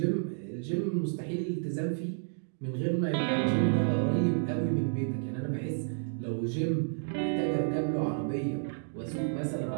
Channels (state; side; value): silent; left; digital silence